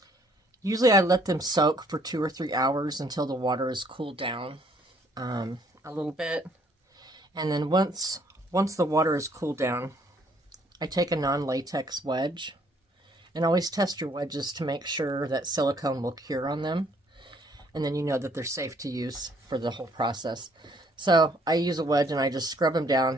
Usually I let them soak for 2 or 3 hours until the water is cooled down a little bit. And then once the water is cooled down, I take a non-latex wedge, and always test your wedges to make sure that silicone will cure on them, and then you know that they're safe to use for the whole process. So I use a wedge and I just scrub them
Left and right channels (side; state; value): both; normal; correlation 0.64